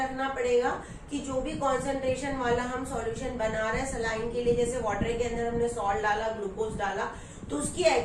पड़ेगा कि जो भी कॉन्सेंट्रेशन वाला हम सॉल्यूशन बना रहे हैं सलाइन के लिए, जैसे वाटर के अंदर हमने सॉल्ट डाला, ग्लूकोज डाला, तो उसकी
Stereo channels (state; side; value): identical; both; correlation 1.00